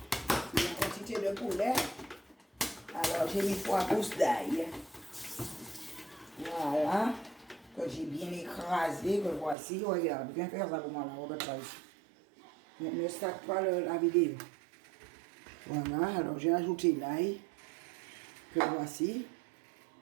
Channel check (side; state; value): left; drops out; at 9.6 s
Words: La quantité de poulet. Alors, j'ai mis 3 pousses d'ail. Voilà. Que j'ai bien écrasé. Que voici. Regarde, viens faire ça pour moi là, Robert Price. Ne stack pas la vidéo. Voilà, alors j'ai ajouté l'ail. Que voici.